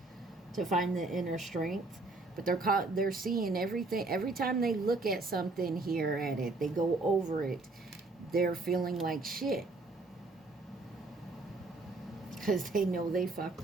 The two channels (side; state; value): left; quieter; 3.4 dB